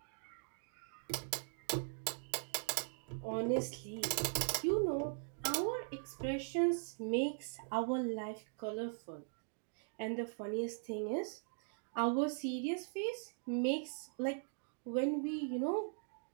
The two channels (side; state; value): left; silent; digital silence